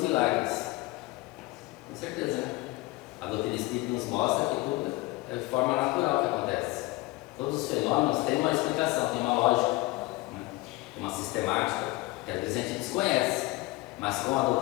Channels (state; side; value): quieter; right; 21.1 dB